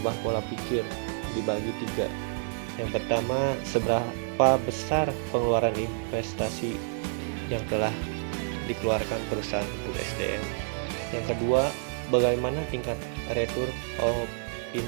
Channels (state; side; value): silent; left; digital silence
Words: pola pikir dibagi 3. Yang pertama, seberapa besar pengeluaran investasi yang telah dikeluarkan perusahaan untuk SDM. Yang kedua, bagaimana tingkat return of